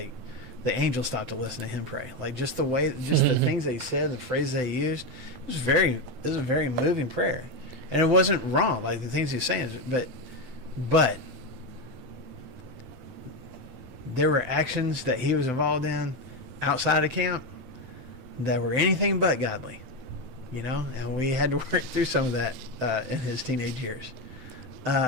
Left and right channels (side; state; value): left; late; 7.8 ms